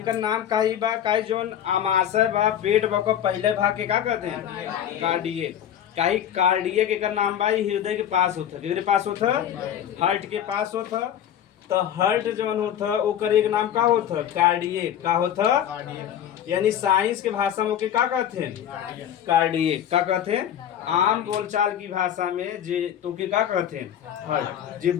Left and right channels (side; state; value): right; quieter; 10.1 dB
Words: नाम काई बा काई जोन आमाशय बा पेट बा को पहले भाग के का कहते हैं कार्डियक। काई कार्डियक एक नाम बा हृदय के पास होता है, पास होता हार्ट के पास होता। तो हार्ट जोन होता ओकर एक नाम का होता कार्डियक का होता। यानी साइंस के भाषा में ओके का कहते हैं कार्डियक का कहते हैं। आम बोलचाल की भाषा में जे तो के का कहते हैं हार्ट। जे